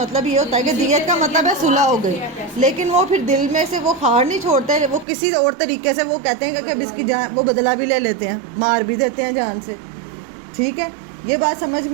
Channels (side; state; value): left; drops out; at 5.1 s